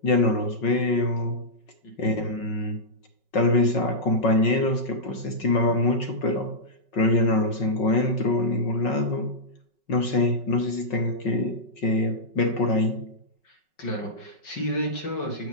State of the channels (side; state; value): right; late; 5.4 ms